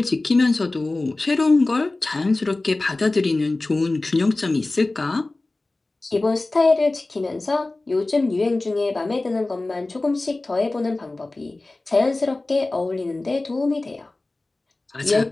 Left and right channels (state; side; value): quieter; right; 3.0 dB